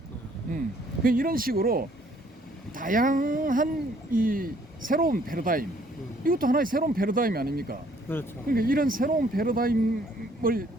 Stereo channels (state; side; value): normal; both; correlation 0.62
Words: 이런 식으로 다양한 이 새로운 패러다임, 이것도 하나의 새로운 패러다임이 아닙니까? 그렇죠. 그러니까 이런 새로운 패러다임을